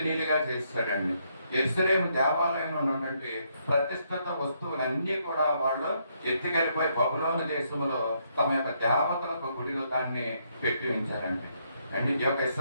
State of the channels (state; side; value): inverted; both; correlation -0.74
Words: చేశాడండి. యెరూషలేము దేవాలయంలో ఉన్నటువంటి ప్రతిష్ఠిత వస్తువులన్నీ కూడా వాళ్ళు ఎత్తుకెళ్ళిపోయి బబులోను దేశంలో తమ యొక్క దేవతలకు గుడిలో దాన్ని పెట్టి ఉంచారండి. అండ్ ఈ యొక్క